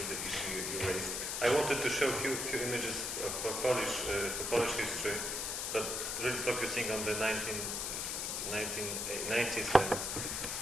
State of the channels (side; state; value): left; noise; hiss, 2 dB below the sound